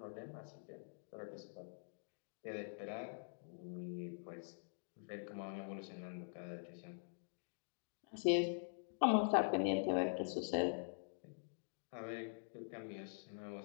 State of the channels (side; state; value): right; silent; digital silence